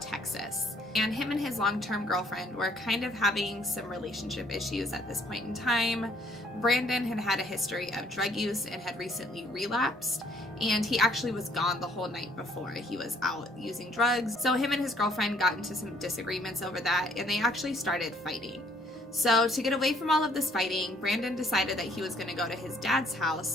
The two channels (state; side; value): normal; both; correlation 0.63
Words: Texas. And him and his long-term girlfriend were kind of having some relationship issues at this point in time. Brandon had had a history of drug use and had recently relapsed, and he actually was gone the whole night before. He was out using drugs. So him and his girlfriend got into some disagreements over that, and they actually started fighting. So to get away from all of this fighting, Brandon decided that he was going to go to his dad's